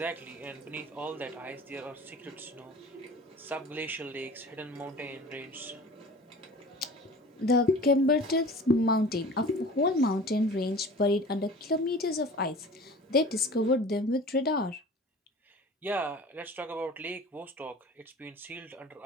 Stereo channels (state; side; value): normal; both; correlation 0.41